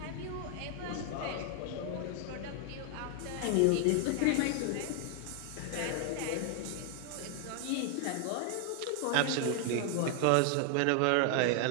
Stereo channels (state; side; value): different; both; correlation 0.00